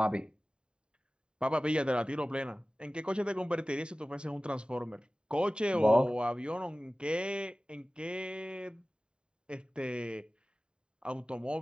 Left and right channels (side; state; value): left; late; 0.050 ms